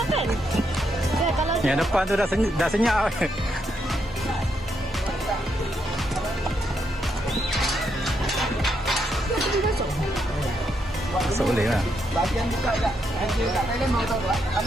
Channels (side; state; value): both; normal; correlation 0.79